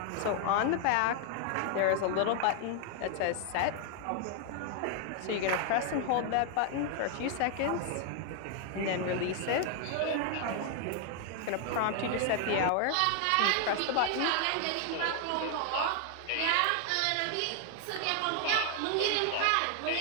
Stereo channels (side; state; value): both; different; correlation 0.00